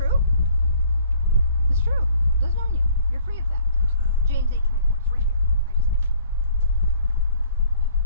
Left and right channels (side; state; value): both; inverted; correlation -0.56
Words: It's true. It doesn't own you. You're free of that. James 8:24. It's right here. I just missed it.